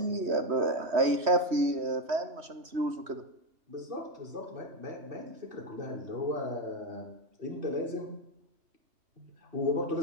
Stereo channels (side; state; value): left; late; 3.1 ms